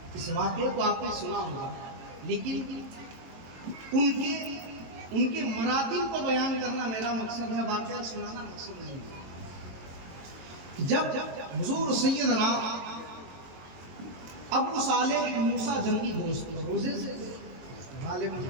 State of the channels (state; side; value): late; left; 22 ms